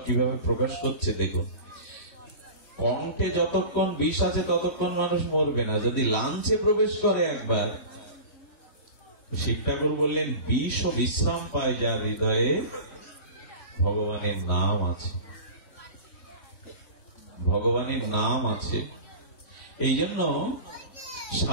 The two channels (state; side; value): late; right; 3.1 ms